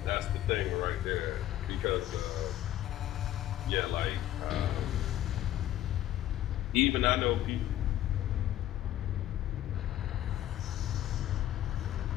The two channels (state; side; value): quieter; right; 13.0 dB